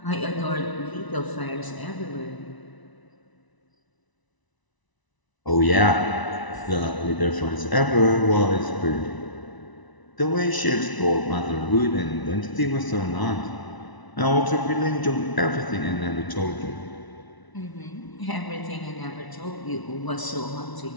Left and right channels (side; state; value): right; late; 1.0 ms